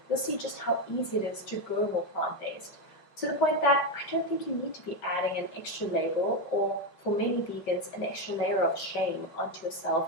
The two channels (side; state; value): right; late; 5.2 ms